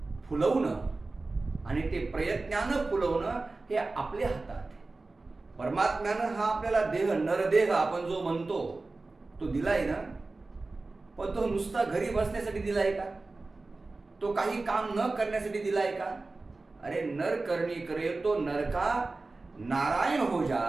फुलवणं आणि ते प्रयत्नानं फुलवणं हे आपल्या हातात आहे. परमात्म्यानं हा आपल्याला देह, नरदेह आपण जो म्हणतो, तो दिलाय ना, पण तो नुसता घरी बसण्यासाठी दिलाय का? तो काही काम न करण्यासाठी दिलाय का? अरे नर करणी करे तो नरका नारायण हो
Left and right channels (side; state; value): left; quieter; 3.4 dB